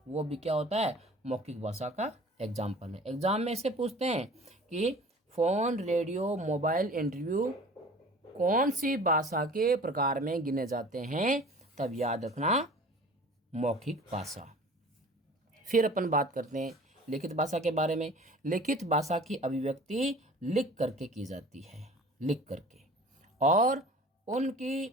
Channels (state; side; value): normal; both; correlation 0.45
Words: वो भी क्या होता है? मौखिक भाषा का एग्जाम्पल है। एग्जाम में से पूछते हैं कि फ़ोन, रेडियो, मोबाइल, इंटरव्यू कौन सी भाषा के प्रकार में गिने जाते हैं? तब याद रखना मौखिक भाषा। फिर अपन बात करते हैं लिखित भाषा के बारे में। लिखित भाषा की अभिव्यक्ति लिख करके की जाती है, लिख करके, और उनकी